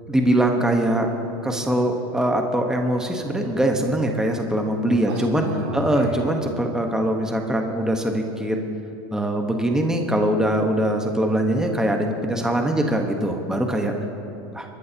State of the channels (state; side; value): normal; both; correlation 0.64